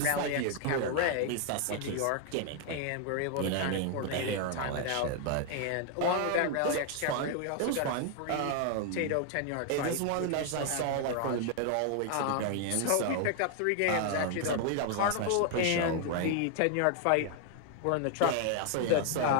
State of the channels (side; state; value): both; different; correlation 0.00